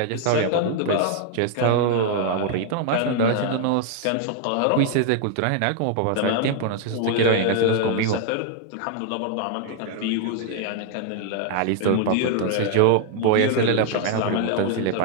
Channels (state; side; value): different; both; correlation 0.00